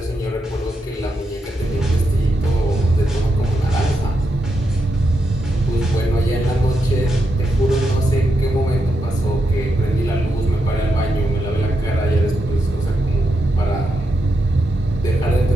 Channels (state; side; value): normal; both; correlation 0.84